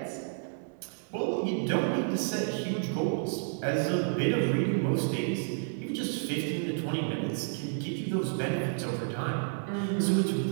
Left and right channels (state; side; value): silent; left; digital silence